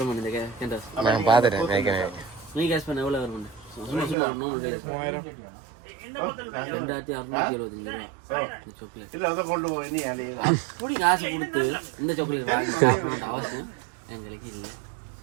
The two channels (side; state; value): left; drops out; at 4.2 s